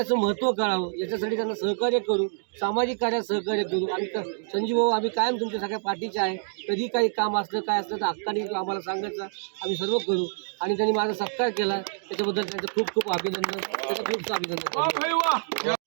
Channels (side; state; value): left; silent; digital silence